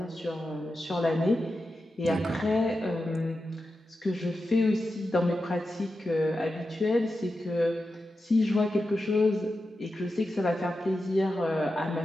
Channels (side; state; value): both; normal; correlation 0.90